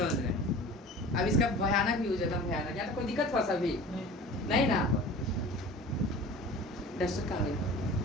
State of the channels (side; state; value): both; normal; correlation 0.39